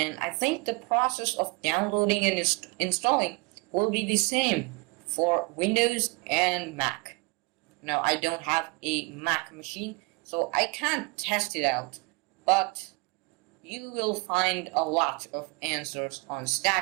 I think the process of downloading and installing will be the same for Windows and Mac. Now I don't have a Mac machine, so I can't test it out, but you will find a lot of answers on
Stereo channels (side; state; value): left; quieter; 27.8 dB